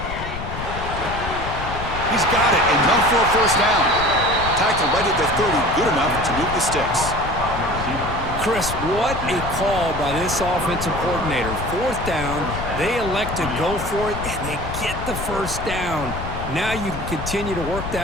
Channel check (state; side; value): noise; left; rumble, 7 dB below the sound